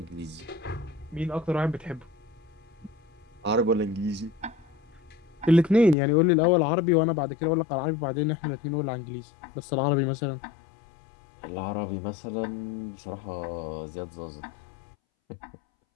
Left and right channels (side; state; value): right; drops out; at 6.0 s